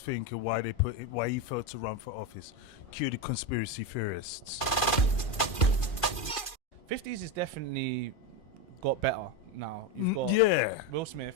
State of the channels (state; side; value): late; right; 2.4 ms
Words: Why he failed to run for office. Cue the conspiracy theorists. 50s is definitely got better now. You've got Will Smith,